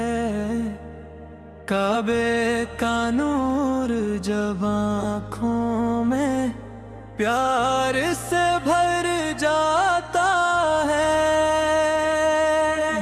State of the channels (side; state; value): both; identical; correlation 1.00